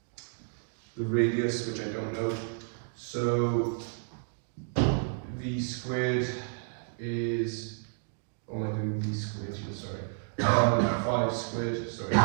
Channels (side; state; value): left; silent; 57 dB below the other